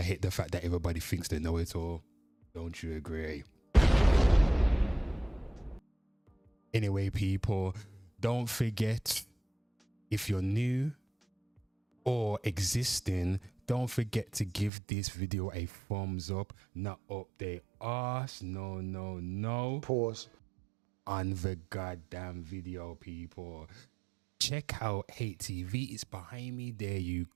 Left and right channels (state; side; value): drops out; left; at 14.7 s